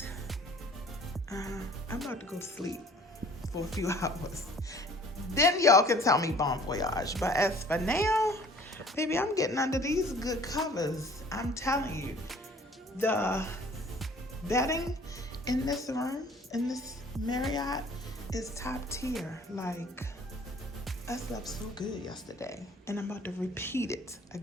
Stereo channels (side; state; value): both; normal; correlation 0.52